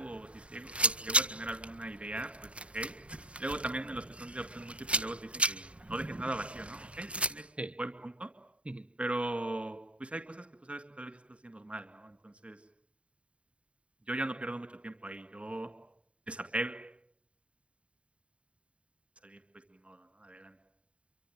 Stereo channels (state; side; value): late; left; 0.061 ms